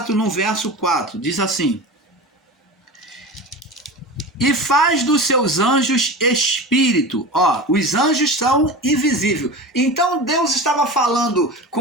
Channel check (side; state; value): both; normal; correlation 0.30